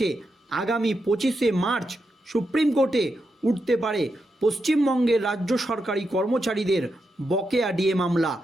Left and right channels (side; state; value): both; normal; correlation 0.85